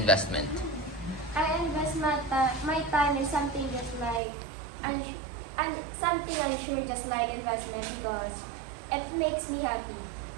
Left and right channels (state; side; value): drops out; left; at 4.2 s